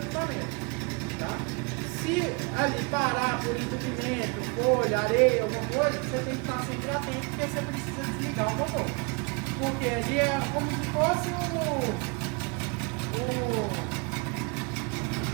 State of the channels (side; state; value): left; quieter; 31.4 dB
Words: tá? Se ali parar por entupimento, folha, areia, alguma coisa, você tem que estar sempre atento, porque você precisa desligar o motor. Porque ali é como se fosse